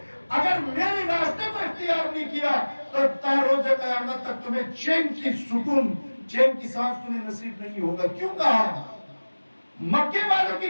اگر میرے راستے کو اختیار نہیں کیا تو تا روز قیامت تک تمہیں چین کی سکون، چین کی سانس تمہیں نصیب نہیں ہوگا. کیوں کہا؟ مکے والوں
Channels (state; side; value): inverted; both; correlation -1.00